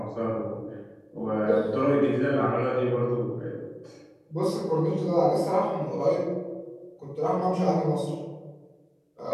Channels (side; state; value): both; identical; correlation 1.00